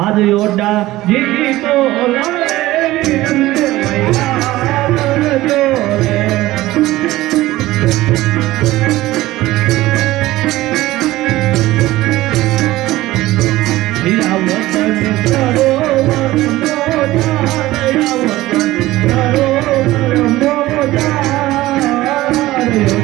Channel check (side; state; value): left; quieter; 17.1 dB